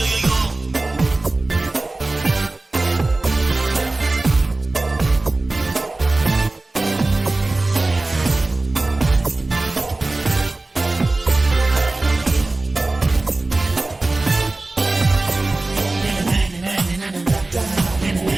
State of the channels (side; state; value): left; quieter; 3.0 dB